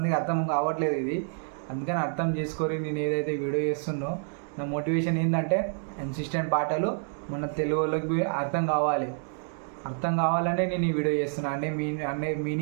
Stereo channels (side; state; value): left; silent; 59 dB below the other